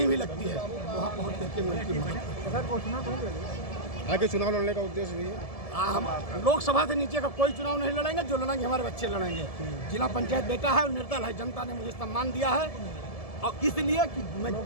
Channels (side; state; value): right; late; 1.7 ms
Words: भी लगती है, वहाँ पहुँच करके मैं उनकी मदद। आगे चुनाव लड़ने का उद्देश्य भी है। हम लोकसभा से नीचे का कोई चुनाव नहीं लड़ेंगे, जो लड़ेंगे हमारे बच्चे लड़ेंगे। जिला पंचायत बेटा है और निर्दल है, जनता ने मुझे सम्मान दिया है। और इसलिए कि मैं